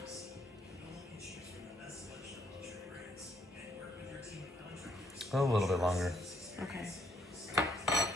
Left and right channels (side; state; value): both; normal; correlation 0.70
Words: A little bit longer. Okay.